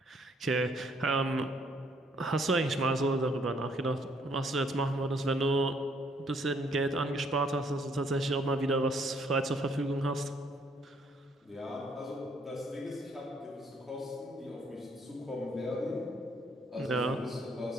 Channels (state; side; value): normal; both; correlation 0.67